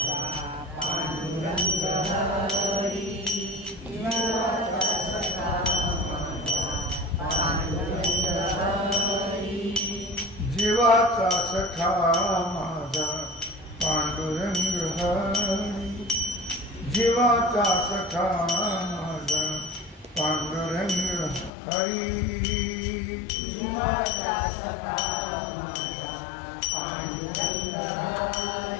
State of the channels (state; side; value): drops out; right; at 21.5 s